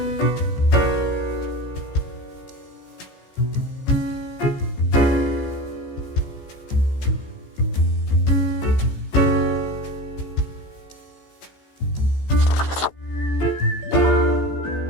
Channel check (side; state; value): right; late; 15 ms